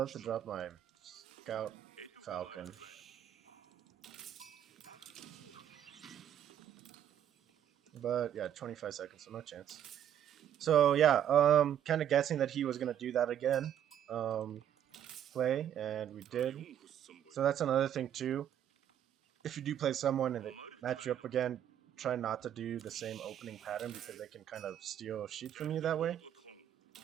to drop my scout falcon. But yeah, 25 seconds, so no chance. So yeah, kind of guessing that he was gonna do that again, play, and we did. So that's another thing too. If you do play someone and they match you up again, try not to do the same opening pattern because they can kind of steal sheep from you that way.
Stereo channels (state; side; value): quieter; left; 10.2 dB